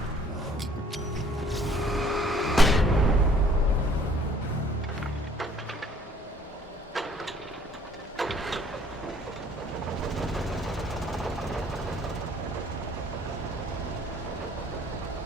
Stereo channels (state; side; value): normal; both; correlation 0.58